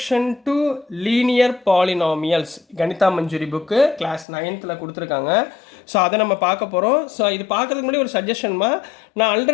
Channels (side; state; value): right; drops out; at 4.2 s